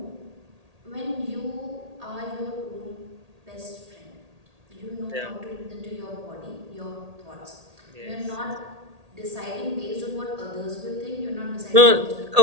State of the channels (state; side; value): late; left; 1.8 ms